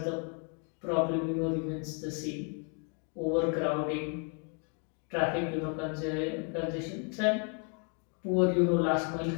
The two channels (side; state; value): right; quieter; 39.1 dB